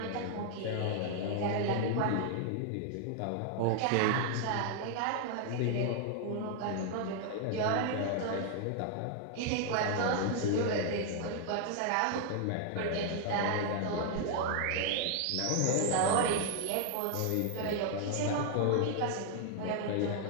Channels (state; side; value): different; both; correlation 0.00